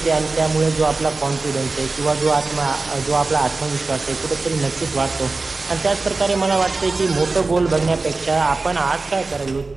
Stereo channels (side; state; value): left; quieter; 3.6 dB